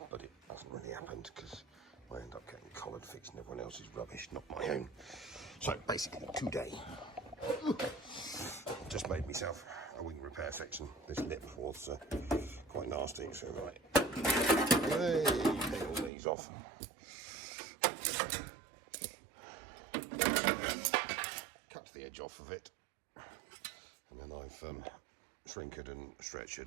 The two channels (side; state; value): left; drops out; at 16.1 s